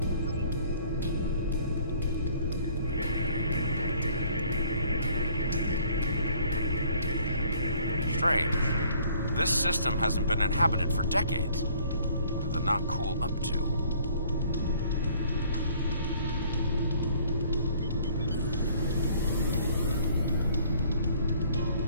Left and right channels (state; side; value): inverted; both; correlation -0.58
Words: Strange. This system hasn't been inhabited for decades. What are the Nakul up to?